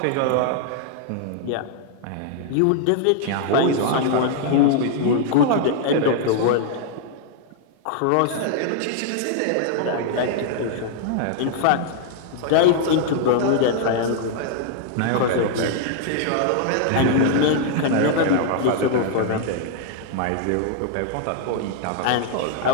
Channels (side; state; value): both; different; correlation 0.00